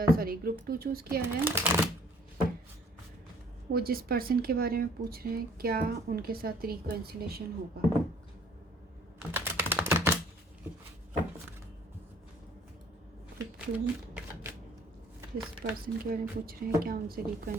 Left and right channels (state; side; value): normal; both; correlation 0.56